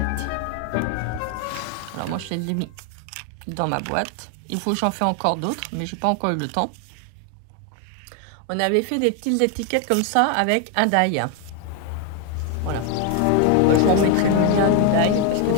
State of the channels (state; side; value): different; both; correlation 0.01